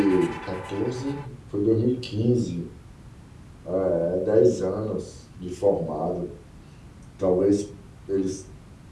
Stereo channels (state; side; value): identical; both; correlation 1.00